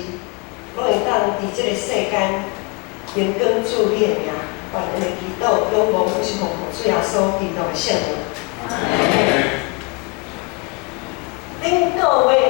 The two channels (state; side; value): quieter; right; 30.2 dB